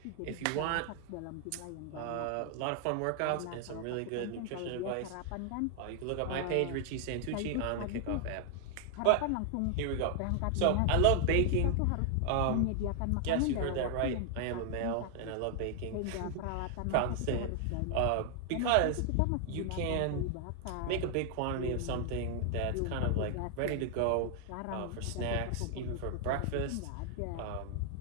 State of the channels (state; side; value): different; both; correlation 0.00